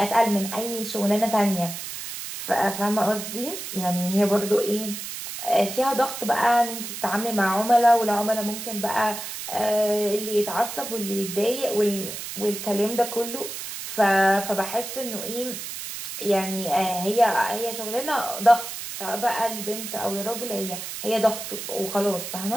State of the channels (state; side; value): noise; right; hiss, 8 dB below the sound